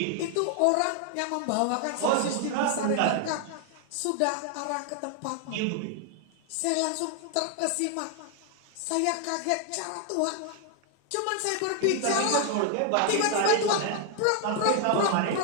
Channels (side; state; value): both; different; correlation 0.00